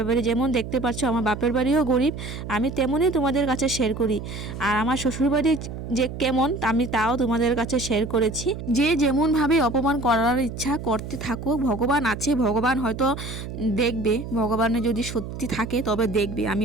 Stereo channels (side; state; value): right; noise; hum, 8 dB below the sound